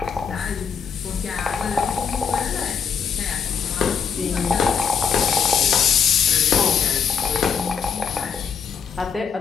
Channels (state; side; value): quieter; right; 6.7 dB